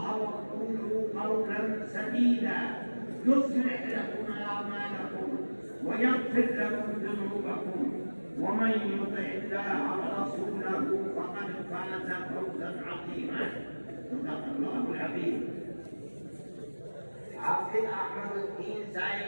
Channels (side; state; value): both; inverted; correlation -1.00